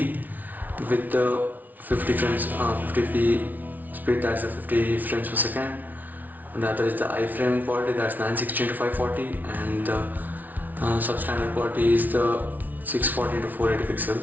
with the 50p speed, that's the 50 frames per second. And the other is the iframe quality, that's 960 into 540, and the substandard quality is the 640 into 480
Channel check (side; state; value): left; late; 0.080 ms